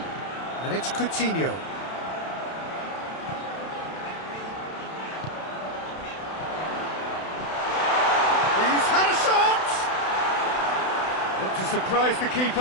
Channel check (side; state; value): right; late; 32 ms